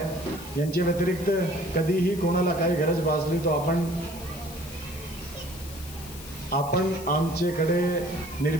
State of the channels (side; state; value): left; noise; hiss, 15 dB below the sound